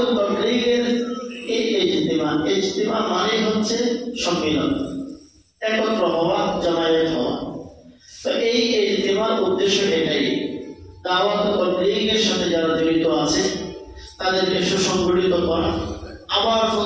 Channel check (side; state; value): both; identical; correlation 1.00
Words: ও তাবলীগের এই ইজতিমা মানে হচ্ছে সম্মেলন, একত্র হওয়া, জমায়েত হওয়া। তো এই ইজতিমার উদ্দেশ্য এটাই, দাওয়াত ও তাবলীগের সাথে যারা জড়িত আছে তাদেরকে সুসংগঠিত করা, আবার